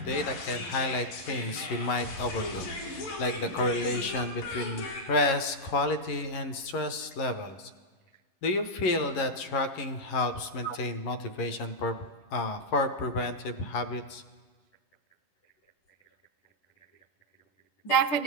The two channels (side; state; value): right; late; 11 ms